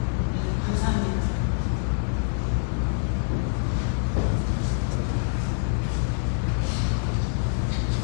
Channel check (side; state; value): right; silent; digital silence